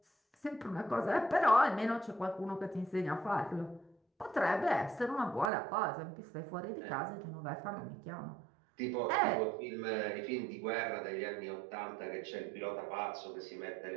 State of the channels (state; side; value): drops out; left; at 5.5 s